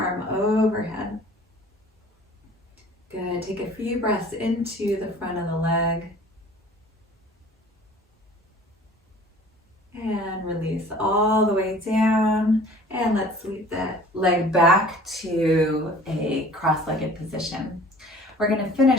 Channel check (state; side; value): normal; both; correlation 0.48